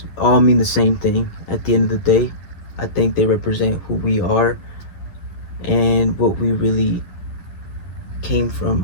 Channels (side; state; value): right; late; 11 ms